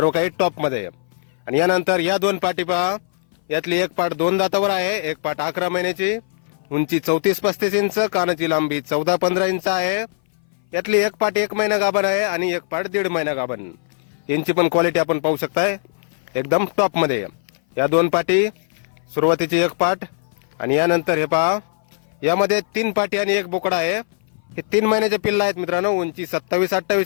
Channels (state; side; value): silent; right; 59 dB below the other